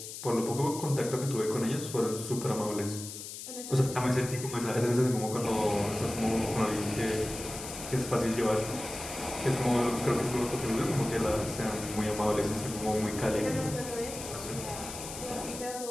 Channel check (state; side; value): noise; left; hiss, 10 dB below the sound